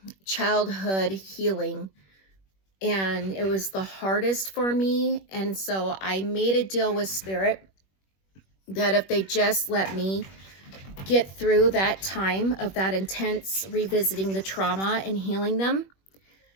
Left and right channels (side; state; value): right; late; 21 ms